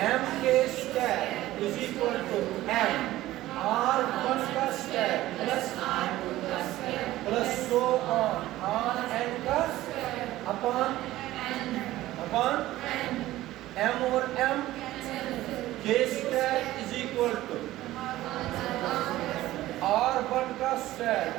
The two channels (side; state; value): left; quieter; 15.8 dB